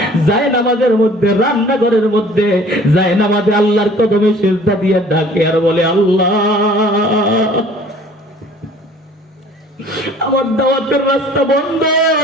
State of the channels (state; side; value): normal; both; correlation 0.51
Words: যায় নামাজের মধ্যে, রান্নাঘরের মধ্যে যায় নামাজে আল্লাহর কদমে সিজদা দিয়ে ডাকে আর বলে, আল্লাহ আমার দাওয়াতের রাস্তা বন্ধ,